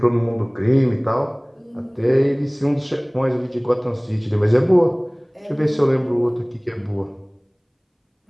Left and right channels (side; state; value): both; identical; correlation 1.00